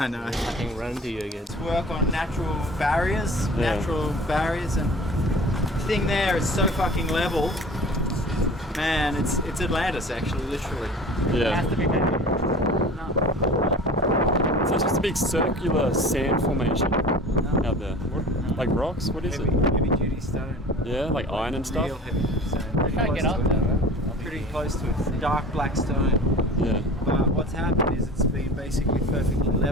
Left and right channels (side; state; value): both; normal; correlation 0.41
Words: know. I can run into you again. Work on natural barriers, and the thing there is so fucking level. Man, it's Atlantis actually, literally. It yeah, has to be better. so it's just a big circular sand formation out there. Like rocks? What is it? Heavy duty stone. Yeah, like iron and Real stuff. heavy duty stone. I try to get out there, man. Pretty close to it. It's dark black stone. Yeah, But what's happened is it's been basically perfectly